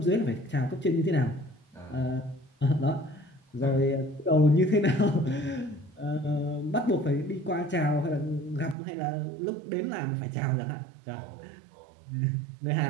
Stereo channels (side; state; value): left; drops out; at 8.8 s